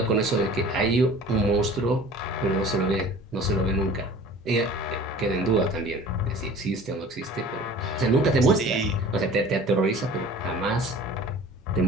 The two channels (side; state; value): both; normal; correlation 0.44